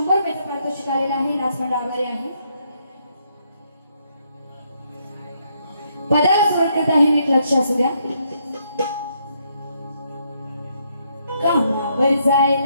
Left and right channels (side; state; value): both; inverted; correlation -0.74